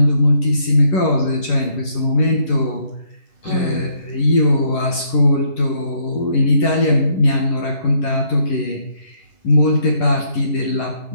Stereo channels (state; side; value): late; right; 11 ms